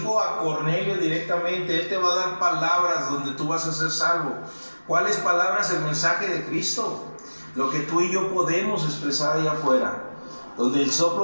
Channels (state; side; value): inverted; both; correlation -1.00